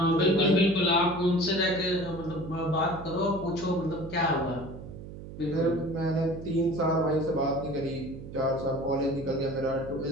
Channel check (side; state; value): right; noise; hum, 12 dB below the sound